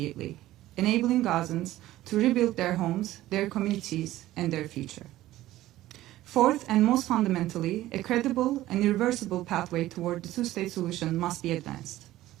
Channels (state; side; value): quieter; left; 15.3 dB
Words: enabling Gazans to rebuild their homes, their communities, and their future. Fourth, and most fundamentally, a credible and irreversible pathway toward the two-state solution must be advanced.